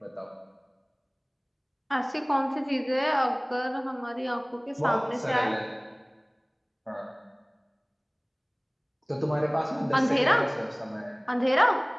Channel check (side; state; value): both; identical; correlation 1.00